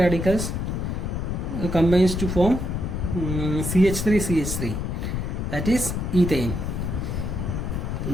combines to form CH3, that is ethane.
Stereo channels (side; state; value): left; noise; rumble, 2 dB below the sound